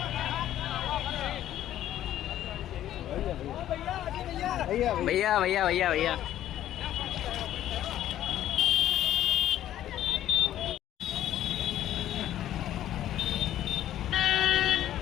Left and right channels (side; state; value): right; quieter; 12.3 dB